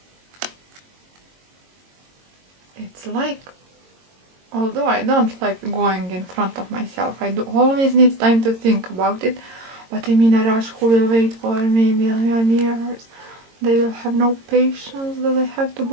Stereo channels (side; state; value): left; late; 22 ms